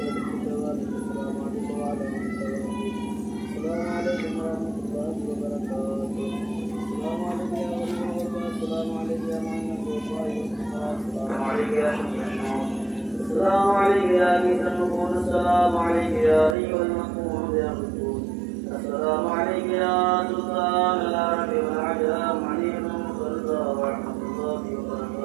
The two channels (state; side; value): drops out; left; at 16.6 s